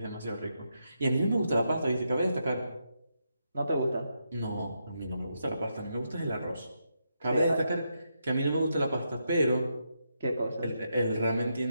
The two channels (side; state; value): both; inverted; correlation -0.82